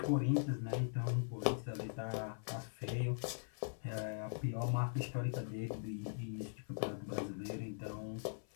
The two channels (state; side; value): silent; right; 50 dB below the other